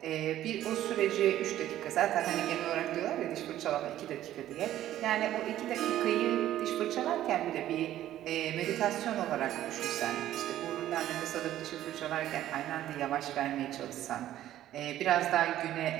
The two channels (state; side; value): quieter; left; 12.9 dB